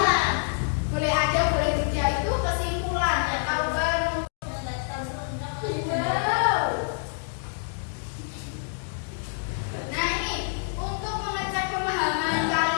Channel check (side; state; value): right; silent; digital silence